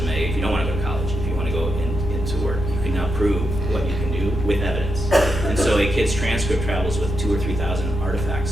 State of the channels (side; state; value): both; normal; correlation 0.85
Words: If you don't want to go to college, if you want to go into work, you can now prove what you can do with evidence. And so a kid's transcript travels with 2,000 or 3,000